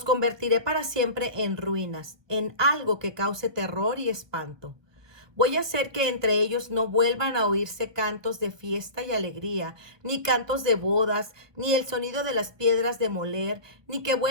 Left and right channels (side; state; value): left; late; 1.2 ms